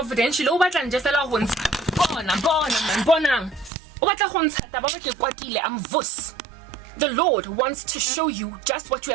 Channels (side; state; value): left; drops out; at 3.7 s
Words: I'm vus. The Lord wants to show you just what you